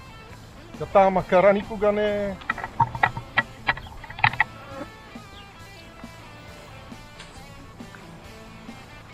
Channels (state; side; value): identical; both; correlation 1.00